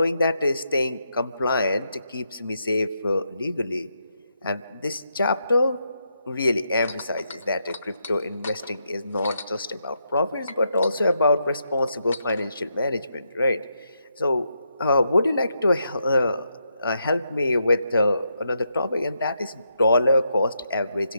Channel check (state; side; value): inverted; both; correlation -0.81